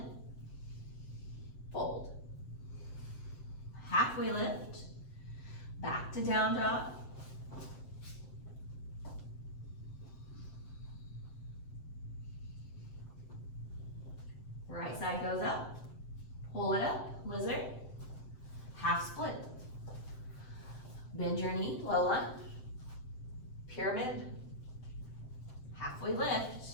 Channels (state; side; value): late; right; 7.7 ms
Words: Fold. Halfway lift. Back to down dog. Right side goes up. Pull it up, lizard. Half split. Bend your knee, low lunge. Pyramid. Halfway lift.